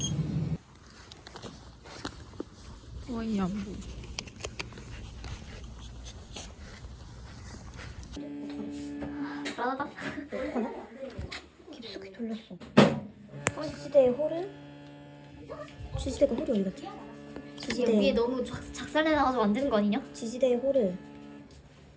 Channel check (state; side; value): identical; both; correlation 1.00